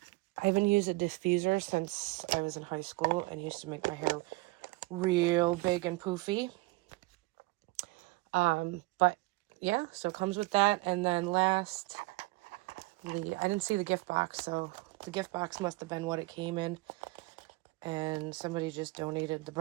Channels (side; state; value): left; quieter; 22.7 dB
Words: I haven't used a diffuser since I was in high school and used to make my hair real big and poofy. But yeah, so it comes with that. And then lastly, I didn't see the gift box, so the gift box must have been what it came in. And somebody just donated the